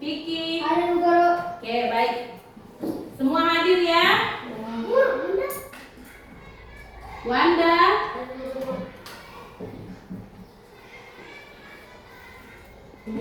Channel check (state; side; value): identical; both; correlation 1.00